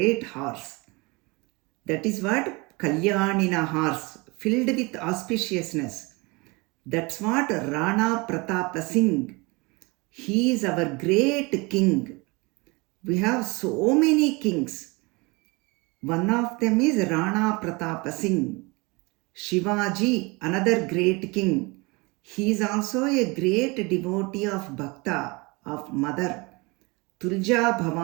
horse. That is what Kalyanina horse, filled with auspiciousness. That's what Rana Pratap Singh. He is our great king. We have so many kings. One of them is Rana Pratap Singh. Shivaji, another great king. He is also a great devotee of Bhakta, of Mother. Tulja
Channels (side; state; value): left; quieter; 26.4 dB